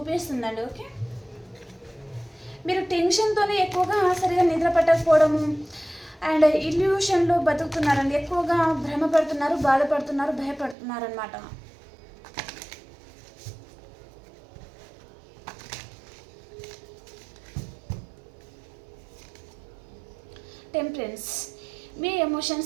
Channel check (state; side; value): drops out; left; at 10.8 s